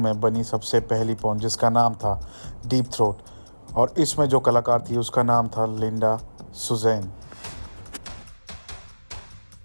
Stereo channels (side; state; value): both; inverted; correlation -1.00